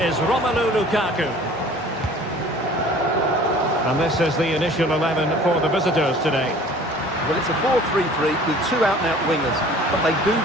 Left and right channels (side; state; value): both; normal; correlation 0.48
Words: Romelu Lukaku. And this is the initial 11 for the visitors today. Well, it's a 4-3-3 with two out-and-out wingers, but they do